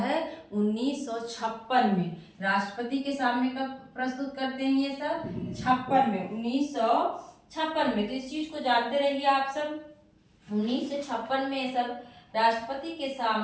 1956 में। राष्ट्रपति के सामने कब प्रस्तुत करते हैं ये सब? 56 में, 1956 में। तो इस चीज को जानते रहिए आप सब, 1956 में ये सब राष्ट्रपति के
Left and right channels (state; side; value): identical; both; correlation 1.00